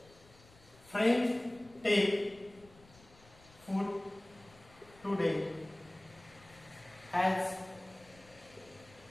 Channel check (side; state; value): left; noise; rumble, 25 dB below the sound